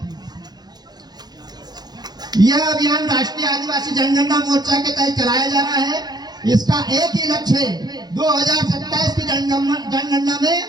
यह अभियान राष्ट्रीय आदिवासी जनगणना मोर्चा के तहत चलाया जा रहा है। इसका एक ही लक्ष्य है, 2027 की जनगणना में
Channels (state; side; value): late; left; 0.20 ms